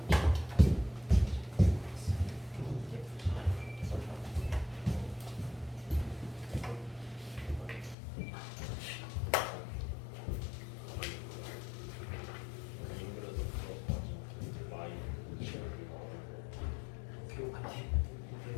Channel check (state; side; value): drops out; right; at 8.0 s